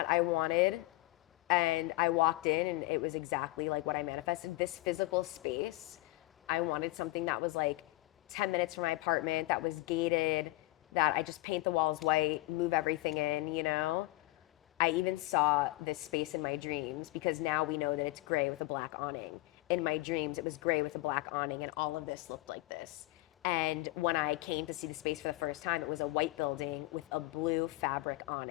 I wanted, and I walked in and it was exactly like what I manifested. This physical space, I wanted something that was like 10 minutes from my apartment, that was gated, that I just paint the walls white, move everything in. I even saw this space in my dreams, because now we know that it's gray with a black awning. In my dreams, it was gray with a black awning, and all of this looked like this. And when I came to see the space for the first time, it was a white building with a blue fabric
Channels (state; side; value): quieter; right; 19.2 dB